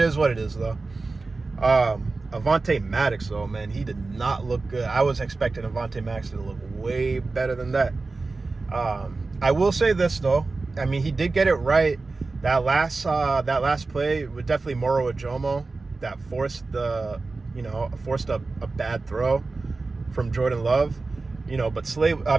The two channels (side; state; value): left; quieter; 3.7 dB